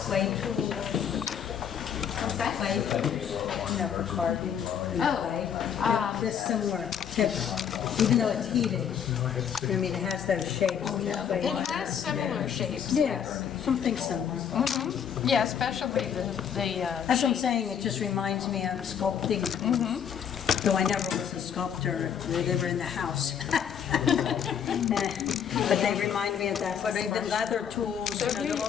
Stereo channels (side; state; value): right; quieter; 8.2 dB